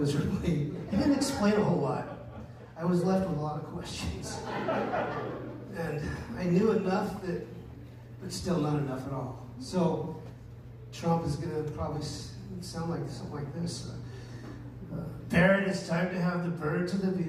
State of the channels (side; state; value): both; identical; correlation 1.00